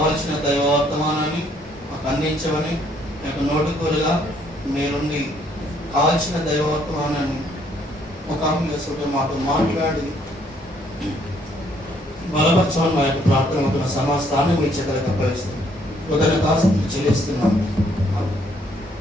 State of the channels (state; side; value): normal; both; correlation 0.67